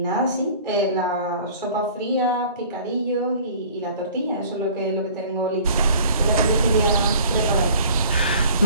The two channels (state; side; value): inverted; both; correlation -0.49